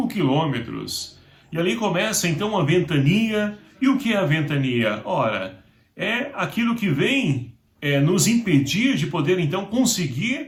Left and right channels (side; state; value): both; identical; correlation 1.00